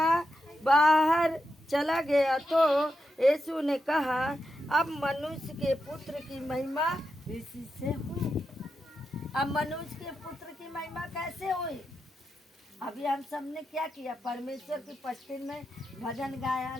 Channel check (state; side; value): normal; both; correlation 0.87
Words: बाहर चला गया तो यीशु ने कहा अब मनुष्य के पुत्र की महिमा इसी से हुई। अब मनुष्य के पुत्र की महिमा कैसे हुई? अभी हम सबने क्या किया? परमेश्वर की उपस्थिति में भजन गाया,